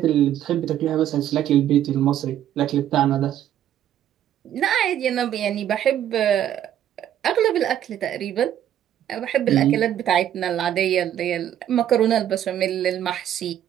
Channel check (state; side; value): quieter; left; 11.0 dB